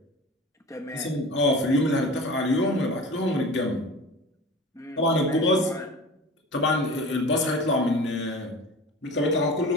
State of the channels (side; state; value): both; normal; correlation 0.37